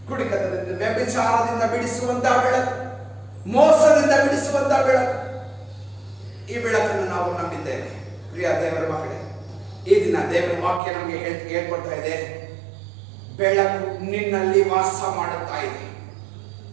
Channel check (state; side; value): drops out; left; at 10.8 s